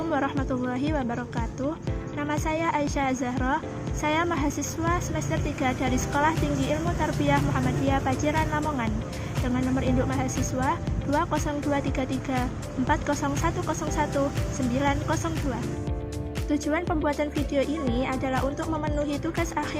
warahmatullahi wabarakatuh. Nama saya Aisyah Zahra. Saya mahasiswa semester 3 dari Sekolah Tinggi Ilmu Tarbiyah Muhammadiyah Paciran Lamongan dengan nomor induk mahasiswa 20233 40101 902. Tujuan pembuatan video ini adalah untuk memenuhi tugas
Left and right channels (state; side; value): identical; both; correlation 1.00